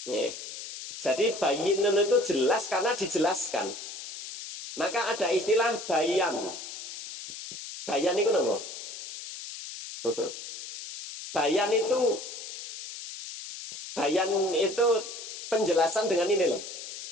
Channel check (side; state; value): left; noise; hiss, 10 dB below the sound